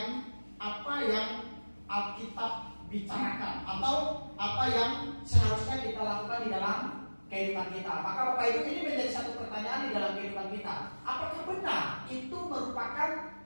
apa yang Alkitab bicarakan atau apa yang seharusnya kita lakukan di dalam kehidupan kita. Maka Bapak Ibu, ini menjadi satu pertanyaan di dalam kehidupan kita. Apakah benar itu merupakan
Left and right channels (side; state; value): both; inverted; correlation -1.00